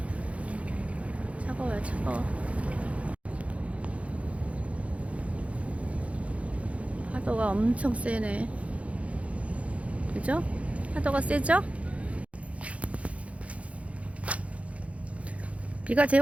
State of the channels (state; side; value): late; left; 0.064 ms